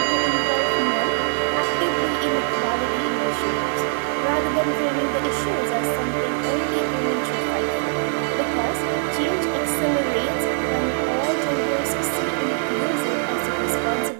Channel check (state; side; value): silent; left; digital silence